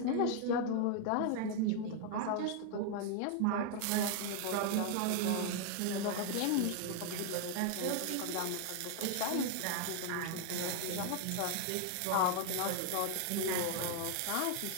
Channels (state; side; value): different; both; correlation 0.00